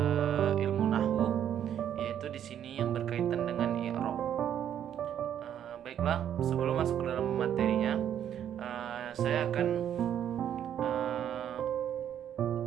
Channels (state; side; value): quieter; left; 9.9 dB